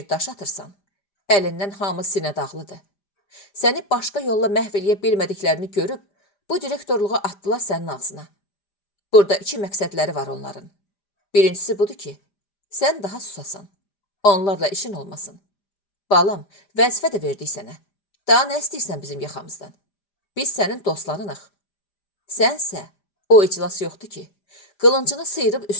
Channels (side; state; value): right; late; 5.0 ms